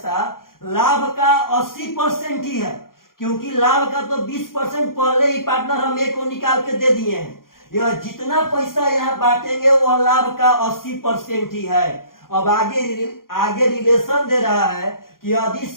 लाभ का 80% ही है, क्योंकि लाभ का तो 20% पहले ही पार्टनर हम एक को निकाल के दे दिए हैं। यह जितना पैसा यहाँ बांटेंगे वह लाभ का 80% ही है। अब आगे रिलेशन दे रहा है कि यदि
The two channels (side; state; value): right; late; 0.91 ms